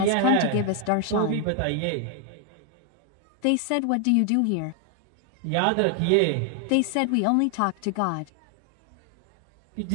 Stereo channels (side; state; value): both; different; correlation 0.00